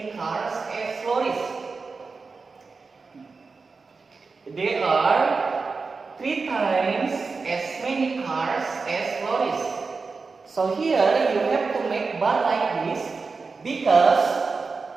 cars as lorries. There are 3 times as many cars as lorries. So here you have to make bar like this because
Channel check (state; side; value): quieter; left; 4.4 dB